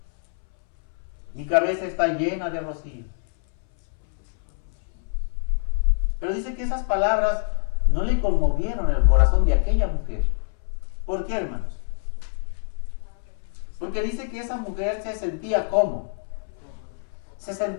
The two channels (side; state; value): right; silent; 61 dB below the other